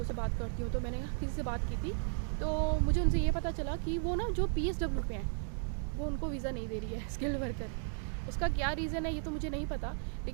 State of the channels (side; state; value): left; silent; 54 dB below the other